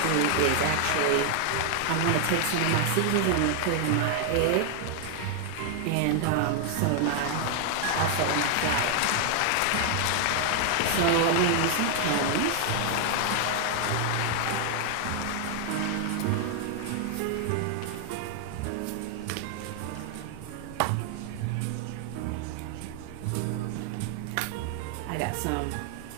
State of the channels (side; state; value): both; different; correlation 0.00